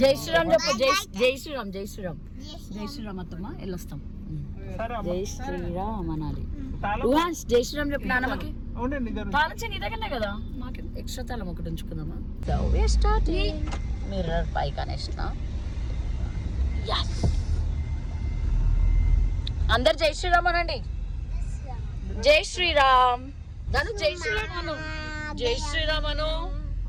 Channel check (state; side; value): identical; both; correlation 1.00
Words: జై శ్రీరామ్ చెప్పు. జై శ్రీరామ్. జై శ్రీరామ్. జై శ్రీరామ్ అత్తమ్మ వెళ్ళొస్తాం. జై శ్రీరామ్ అనాలి. జై శ్రీరామ్ చెప్పు నాన్నమ్మకి. తాళం నీ దగ్గరనే కదా, మాకు ఎక్స్ట్రా తాళం ఒకటి ఉంచుకుందామా. మిర్రర్ పైకి అనేసిన. అందరు జై శ్రీరామ్ అనండి. జై శ్రీరామ్. దాని జై శ్రీరామ్ అను. జై శ్రీరామ్ అను.